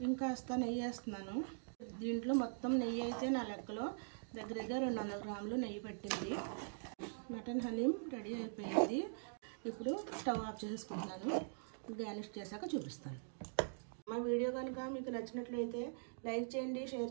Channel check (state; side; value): silent; left; digital silence